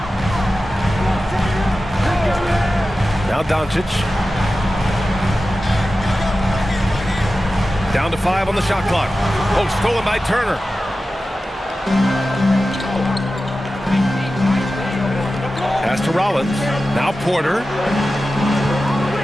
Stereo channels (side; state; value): both; normal; correlation 0.94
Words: Now Doncic. Down to 5 on the shot clock. Oh, stolen by Turner. Pass to Rollins. Now Porter.